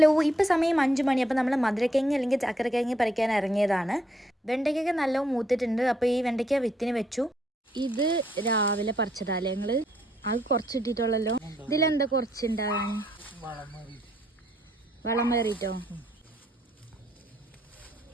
ഇപ്പോൾ സമയം 5 മണി. അപ്പോൾ നമ്മൾ മധുരക്കിഴങ്ങ് അല്ലെങ്കിൽ ചക്കരക്കിഴങ്ങ് പറിക്കാൻ ഇറങ്ങിയതാണ്. വെണ്ടയ്ക്കൊക്കെ നല്ല മൂത്തിട്ടുണ്ട്. അപ്പോൾ ഈ വെണ്ടയ്ക്ക വിത്തിന് വെച്ചു. ഇത് രാവിലെ പറിച്ചതാല്ലേ ഞങ്ങൾ? അത് കുറച്ചിട്ടിട്ടുള്ളല്ലോ. ഇതിലെന്താ കുറച്ചുണ്ടാകാൻ? വളം കയറിയിട്ടോ?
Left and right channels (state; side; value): normal; both; correlation 0.72